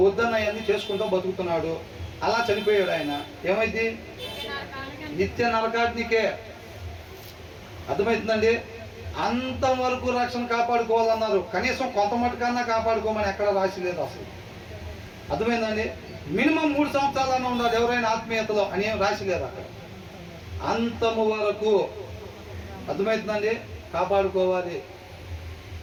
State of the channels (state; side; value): identical; both; correlation 1.00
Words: వద్దన్నయన్నీ చేసుకుంటూ బతుకుతున్నాడు. అలా చనిపోయాడు ఆయన. ఏమైంది? నిత్య నరకాగ్నికే. అర్థమవుతుందండి? అంతం వరకు రక్షణ కాపాడుకోవాలన్నారు. కనీసం కొంత మటుకన్నా కాపాడుకోమని ఎక్కడ రాసి లేదు అసలు. అర్థమైందండి? మినిమం 3 సంవత్సరాలన్నా ఉండాలి ఎవరైనా ఆత్మీయతలో అని ఏం రాసి లేదు అక్కడ. అంతము వరకు. అర్థమవుతుందండి? కాపాడుకోవాలి.